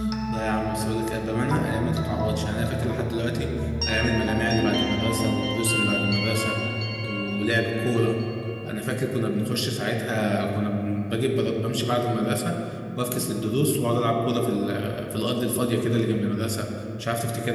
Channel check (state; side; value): identical; both; correlation 1.00